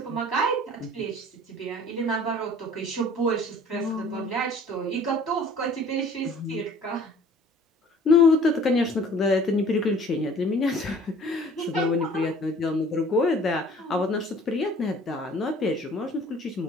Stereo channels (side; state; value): both; normal; correlation 0.51